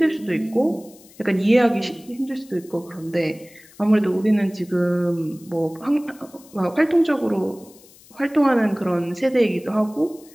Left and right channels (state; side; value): noise; left; hiss, 25 dB below the sound